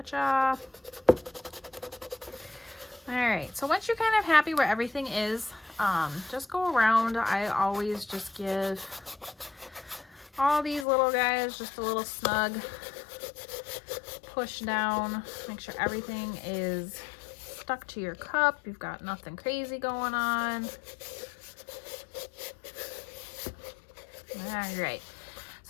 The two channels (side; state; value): right; drops out; at 10.9 s